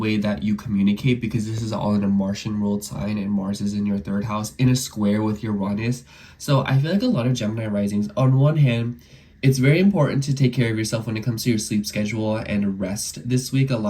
that you communicate, because this is all in a Martian ruled sign, and Mars is in your 3rd house in a square with Uranus. So I feel like a lot of Gemini risings, on one hand, it's very important to take care of yourself when it comes to your sleep schedule and rest this week. A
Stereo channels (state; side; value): identical; both; correlation 1.00